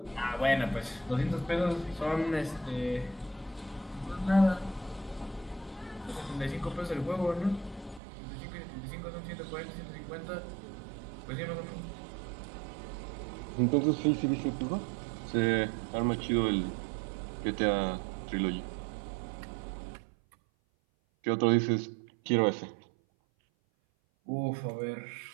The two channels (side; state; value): left; drops out; at 8.0 s